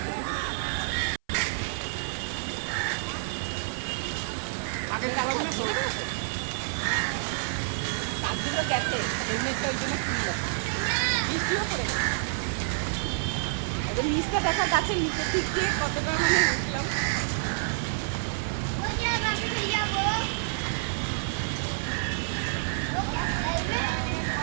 আগের কাগজগুলো দিয়ে দেবে না তো? কাগজগুলো গেছে, হেলমেটটা ওই জন্য খুললো, বৃষ্টিও পড়েছে। এবার নিচটা দেখা, গাছের নিচে ঠিক দিয়ে কতটা মানে উঠলাম।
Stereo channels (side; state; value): left; silent; 57 dB below the other